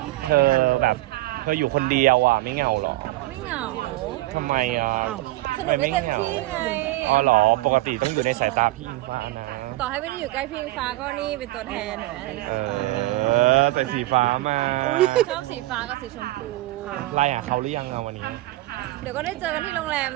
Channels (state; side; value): quieter; left; 18.0 dB